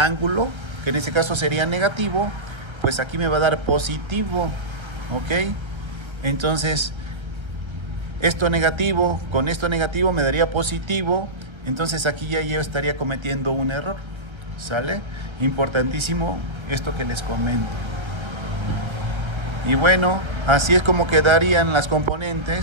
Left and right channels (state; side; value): late; left; 1.3 ms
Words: que en este caso sería negativo, pues aquí me va a dar positivo, ¿ok? Entonces, esto negativo con esto negativo me daría positivo, entonces aquí ya yo estaría cometiendo un error, ¿sale? Importantísimo esto que les comento. Y bueno, así es como quedarían las